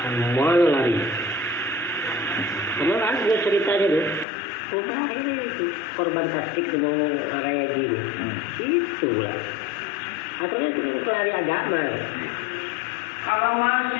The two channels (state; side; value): drops out; right; at 4.2 s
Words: mana lari? Kemarin ada ceritanya tuh. Ini itu korban tasdik dengan raya gini. Itulah. Asalnya itu pelari agama. Kalau